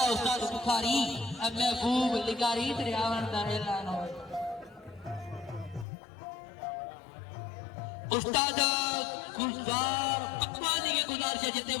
उस्ताद बुखारी अब महबूब लिगारी तेरे आवन दा ऐलान होवे उस्ताद गुलजार पकवानी के गुजारिश जितने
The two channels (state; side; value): drops out; right; at 5.9 s